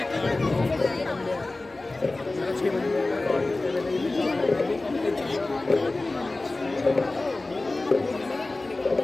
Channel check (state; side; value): quieter; right; 3.1 dB